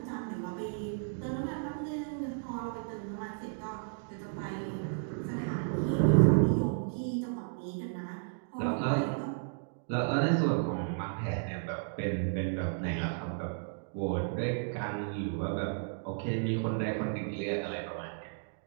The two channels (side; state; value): left; silent; digital silence